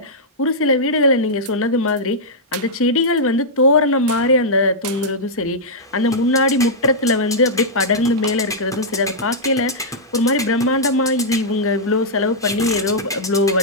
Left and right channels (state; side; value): normal; both; correlation -0.09